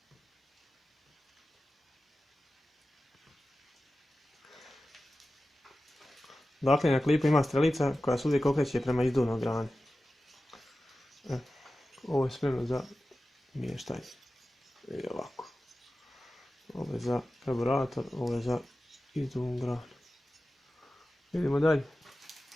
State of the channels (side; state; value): both; normal; correlation 0.94